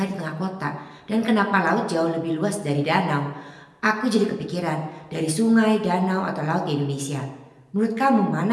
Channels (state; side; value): identical; both; correlation 1.00